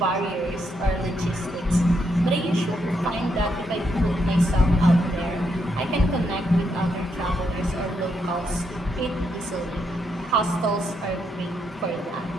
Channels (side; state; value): both; normal; correlation 0.78